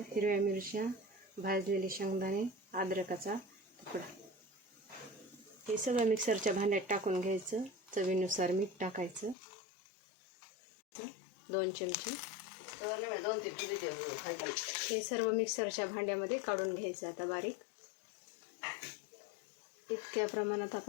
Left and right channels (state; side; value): drops out; right; at 9.3 s